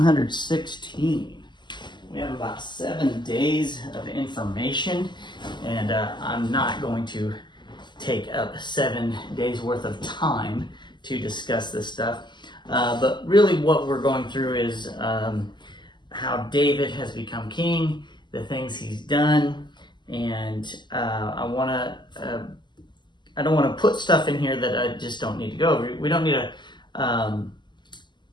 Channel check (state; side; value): late; right; 0.21 ms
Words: We have about 7 days of information, and I'm not going to take up 7 days worth of time to discuss this stuff. But really what we're going through is how David has become king, the things he's done, and I don't want to put stuff in here that I just don't need to go over. We don't need a